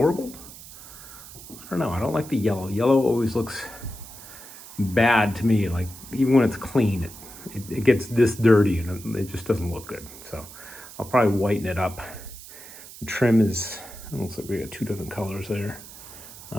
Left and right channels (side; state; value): right; noise; hiss, 16 dB below the sound